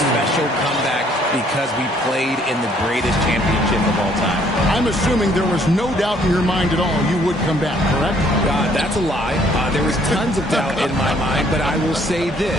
comeback because we played in the greatest championship of all time. I'm assuming there was no doubt in your mind at all you would come back, correct? That's a lie. There was tons of doubt in my mind, but I will say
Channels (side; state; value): both; normal; correlation 0.63